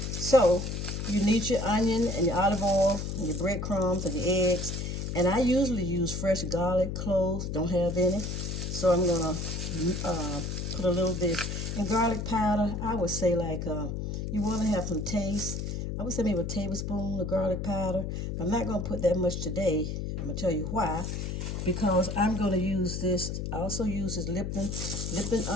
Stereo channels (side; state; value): left; noise; hum, 3 dB below the sound